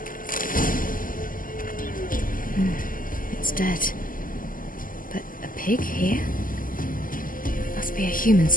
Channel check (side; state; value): right; late; 0.40 ms